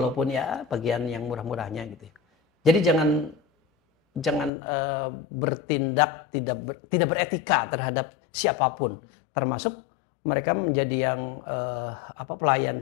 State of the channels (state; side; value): drops out; right; at 4.5 s